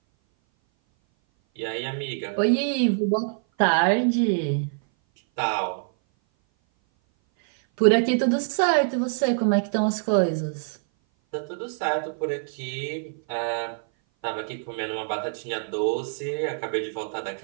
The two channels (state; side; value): silent; left; 57 dB below the other